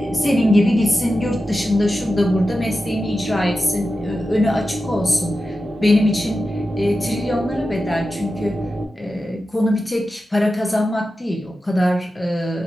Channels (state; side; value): normal; both; correlation 0.92